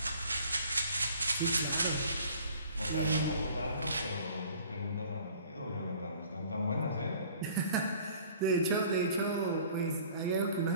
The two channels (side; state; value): both; inverted; correlation -0.51